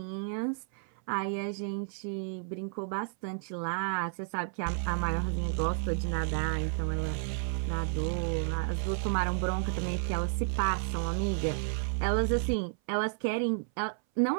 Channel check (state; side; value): silent; left; 57 dB below the other